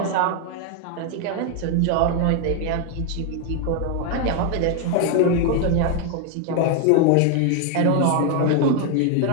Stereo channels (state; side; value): different; both; correlation 0.01